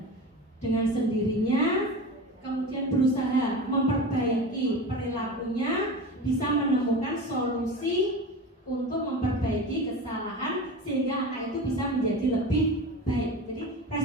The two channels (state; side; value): normal; both; correlation 0.30